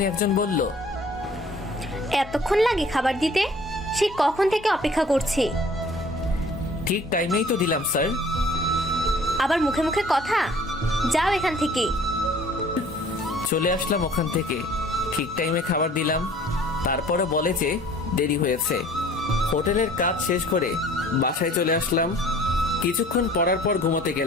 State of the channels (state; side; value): normal; both; correlation 0.52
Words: একজন বলল, এতক্ষণ লাগে খাবার দিতে? সে কখন থেকে অপেক্ষা করছি। ঠিক টাইমেই তো দিলাম স্যার। আবার মুখে মুখে কথা, যাও এখান থেকে। চলে আসলাম ওখান থেকে, ঠিক টাইমে খাবার দিলাম। তারপরে বলে যে দেরি হয়েছে। হোটেলের কাজ শেষ করে বাসায় চলে আসলাম। কিছুক্ষণ পড়ার পর ঘুমোতে